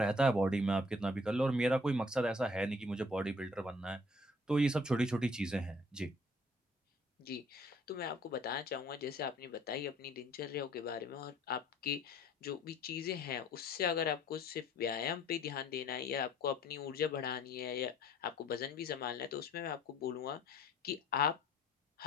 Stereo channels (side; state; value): both; normal; correlation 0.57